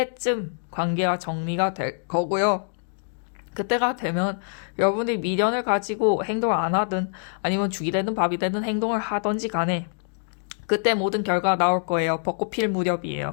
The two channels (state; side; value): silent; right; digital silence